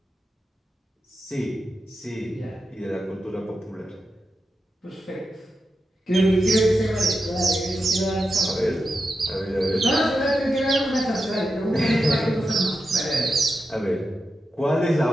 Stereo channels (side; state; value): both; normal; correlation 0.89